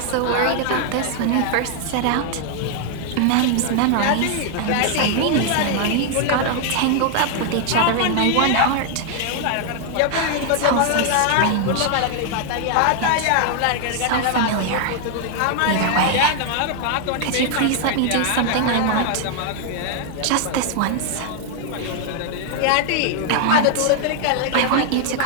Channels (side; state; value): both; different; correlation 0.00